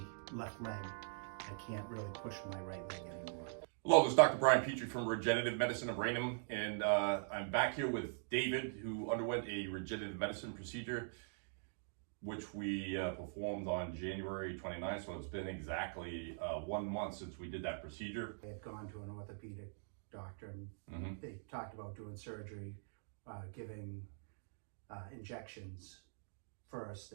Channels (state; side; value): silent; left; digital silence